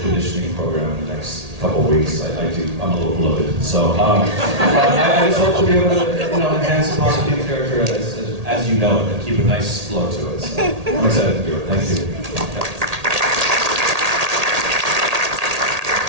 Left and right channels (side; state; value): left; late; 1.8 ms